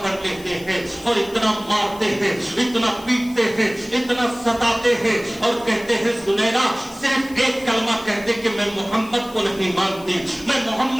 लेते हैं और इतना मारते हैं, इतना पीटते हैं, इतना सताते हैं और कहते हैं सुनैरा सिर्फ एक कलमा कह दे कि मैं मोहम्मद को नहीं मानती, मैं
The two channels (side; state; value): left; noise; hiss, 21 dB below the sound